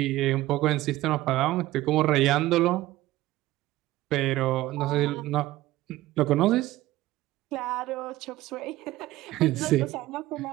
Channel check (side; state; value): left; quieter; 16.7 dB